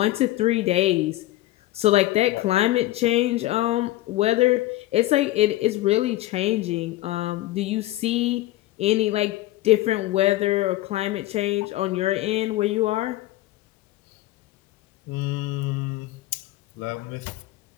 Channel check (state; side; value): quieter; right; 16.6 dB